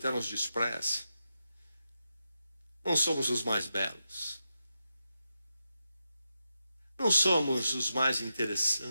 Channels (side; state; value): both; inverted; correlation -0.88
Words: nos despreze. Não somos os mais belos. Não somos os mais